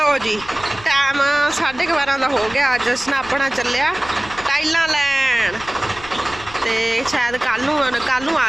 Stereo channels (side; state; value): left; noise; rumble, 19 dB below the sound